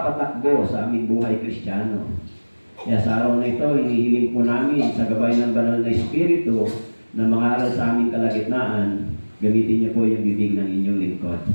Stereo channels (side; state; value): both; inverted; correlation -1.00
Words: sa aming buhay Kristiyano. Kaya sa araw na ito, hinihiling po namin sa gabay ng Banal na Espiritu na mga aral sa aming kalagitnaan, gamitin niyo po yung bibig ng inyong lingkod.